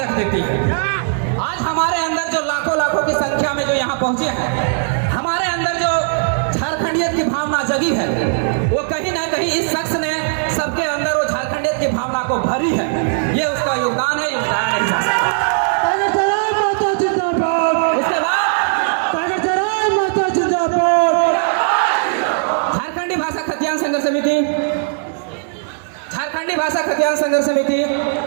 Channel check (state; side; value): silent; left; 65 dB below the other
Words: रख देती है। आज हमारे अंदर जो लाखों लाखों की संख्या में जो यहाँ पहुंचे हैं, हमारे अंदर जो झारखंडियत की भावना जगी है, वो कहीं ना कहीं इस शख्स ने सबके अंदर वो झारखंडियत की भावना को भरी है। ये उसका योगदान है, योगदान नहीं जा सकता। उसके बाद झारखंडी भाषा खतियान संघर्ष समिति, झारखंडी भाषा खतियान संघर्ष समिति